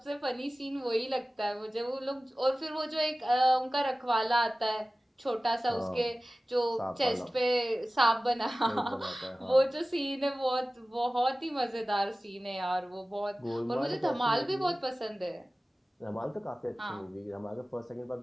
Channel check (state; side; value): normal; both; correlation 0.97